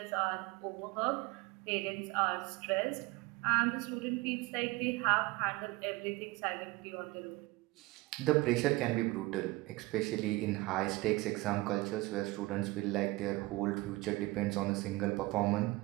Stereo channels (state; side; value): quieter; left; 21.5 dB